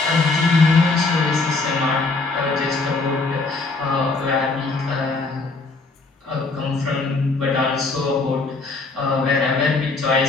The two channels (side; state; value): right; quieter; 3.6 dB